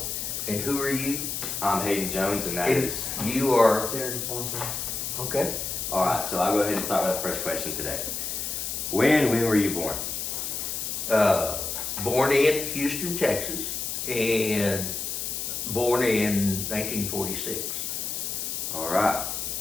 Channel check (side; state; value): left; noise; hiss, 3 dB below the sound